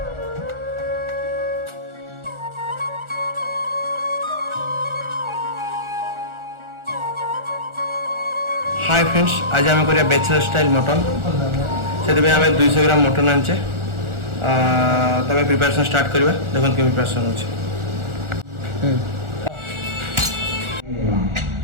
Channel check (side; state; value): left; late; 1.4 ms